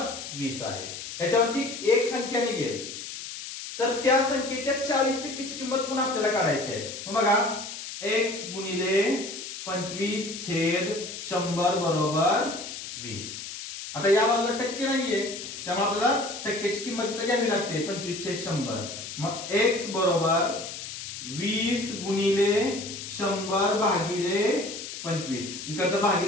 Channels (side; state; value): left; noise; hiss, 9 dB below the sound